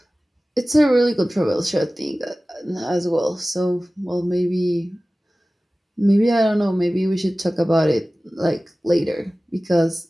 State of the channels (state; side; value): normal; both; correlation 0.97